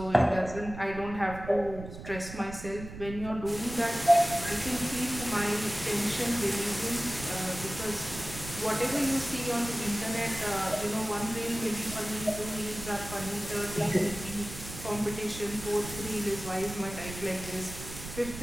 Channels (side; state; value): right; noise; rumble, 11 dB below the sound